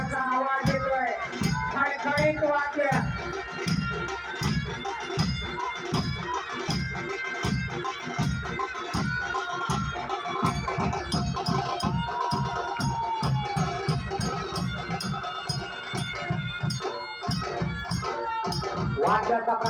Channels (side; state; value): both; identical; correlation 1.00